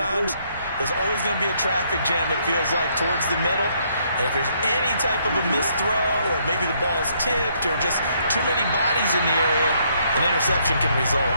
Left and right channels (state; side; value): inverted; both; correlation -0.70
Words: there's always going to be a traffic jam, it feels like, towards the middle. And if there's any type of a missed throw or maybe the ball's tipped or just too many bodies in the area, an interception can result.